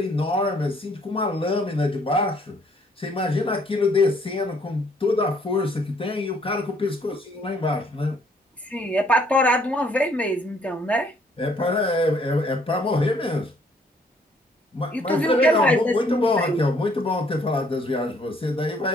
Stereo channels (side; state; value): both; normal; correlation 0.64